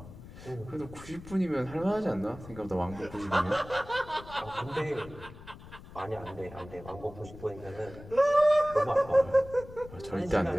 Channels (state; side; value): noise; left; rumble, 17 dB below the sound